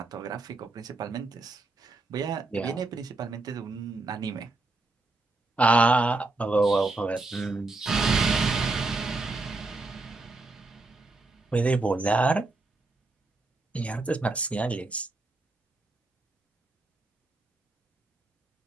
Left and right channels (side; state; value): left; quieter; 3.2 dB